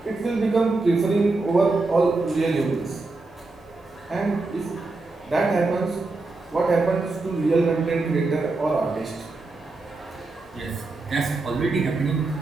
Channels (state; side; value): quieter; left; 3.4 dB